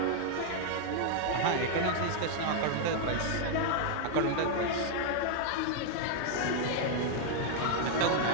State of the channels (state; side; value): different; both; correlation 0.00